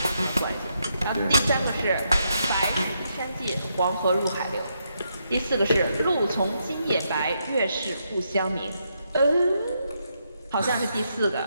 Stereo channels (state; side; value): inverted; both; correlation -0.80